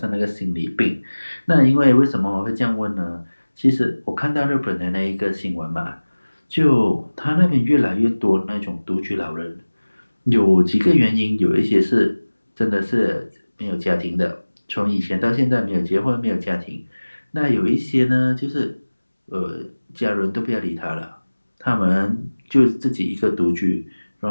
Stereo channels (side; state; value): both; inverted; correlation -1.00